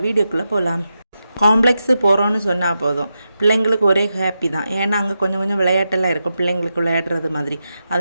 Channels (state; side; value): inverted; both; correlation -0.88